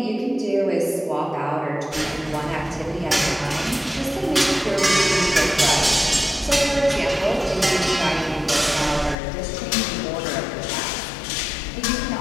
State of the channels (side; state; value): right; drops out; at 9.2 s